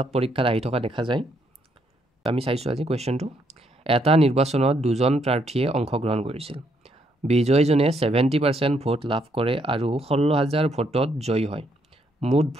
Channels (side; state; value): both; normal; correlation 0.73